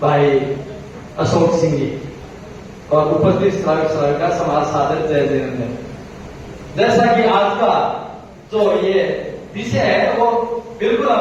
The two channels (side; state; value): both; identical; correlation 1.00